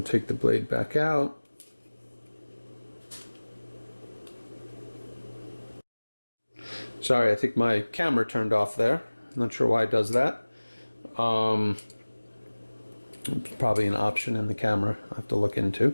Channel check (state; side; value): inverted; both; correlation -1.00